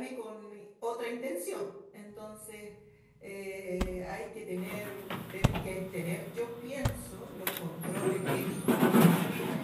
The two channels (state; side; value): identical; both; correlation 1.00